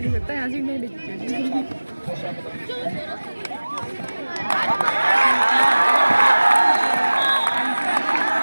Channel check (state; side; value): inverted; both; correlation -1.00